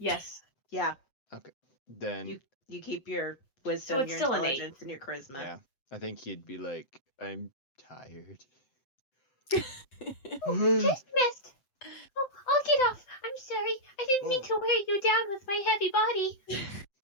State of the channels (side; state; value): right; late; 7.8 ms